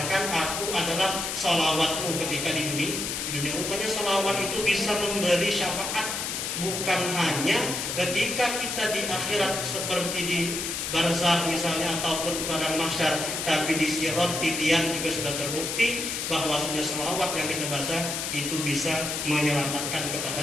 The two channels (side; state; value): left; noise; hiss, 3 dB below the sound